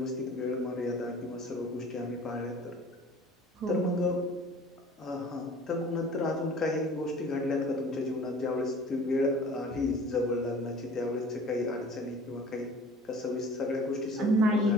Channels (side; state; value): both; normal; correlation 0.46